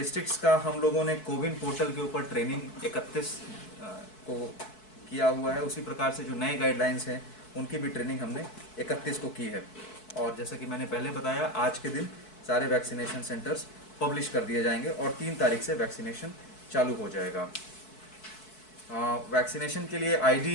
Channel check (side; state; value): right; late; 4.6 ms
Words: का हम लोगों ने कोविन पोर्टल के ऊपर ट्रेनिंग 31 को किया हुआ है। उसी प्रकार से जो नए गाइडलाइंस हैं उनकी भी ट्रेनिंग हमने 31 को की है। और जैसा कि मैंने पहले बताया, आज के दिन सारे वैक्सीनेशन सेंटर्स पब्लिश कर दिए जाएंगे और 3 तारीख से वैक्सीनेशन चालू हो जाएगा। वैक्सीनेशन के लिए